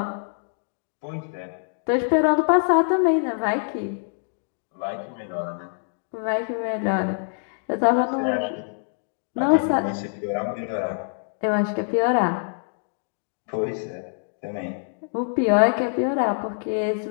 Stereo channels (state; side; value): silent; right; digital silence